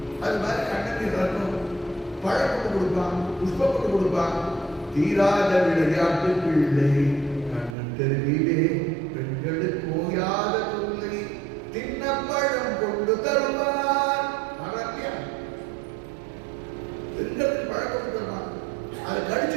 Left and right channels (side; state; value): left; drops out; at 7.8 s